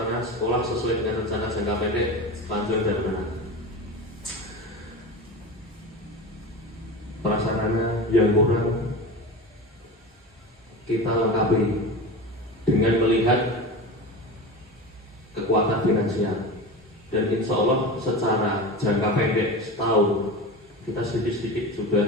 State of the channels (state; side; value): normal; both; correlation 0.28